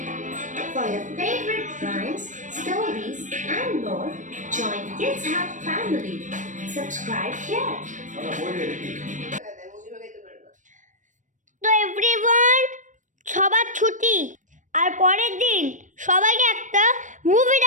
For your favorite rhymes, stories, and more, join Kids Hub family. Subscribe here. তো everyone, সবার ছুটি, আর পরের দিন সবাইকে একটা movie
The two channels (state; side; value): late; left; 0.37 ms